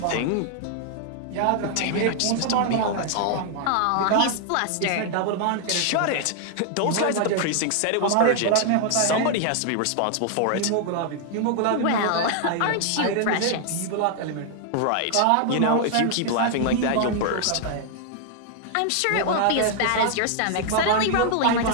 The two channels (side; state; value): both; different; correlation 0.00